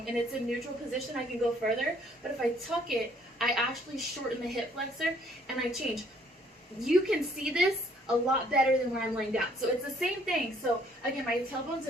and it's in neutral position, I can go further. But if I tuck it, I actually shorten the hip flexor and I change. You can see this a lot better than when I'm laying down. So it's the same thing. So again, my tailbone's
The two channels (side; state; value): both; normal; correlation 0.62